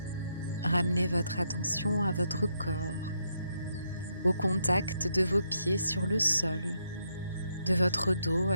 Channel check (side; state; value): both; inverted; correlation -0.78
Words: Ramenez votre attention à votre corps, au contact de vos pieds sur le sol, de votre dos